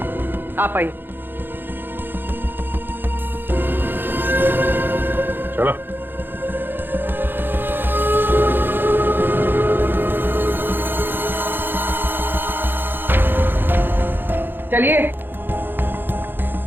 आप आइए। चलो। चलिए।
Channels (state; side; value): late; left; 0.099 ms